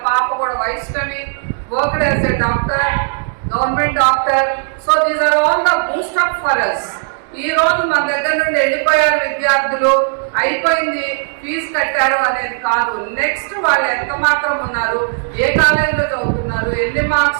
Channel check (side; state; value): left; silent; digital silence